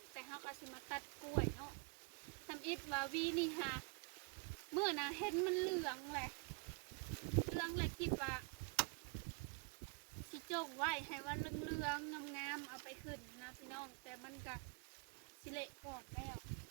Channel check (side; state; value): left; quieter; 35.4 dB